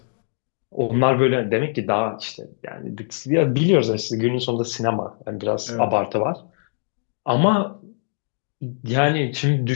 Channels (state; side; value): silent; right; digital silence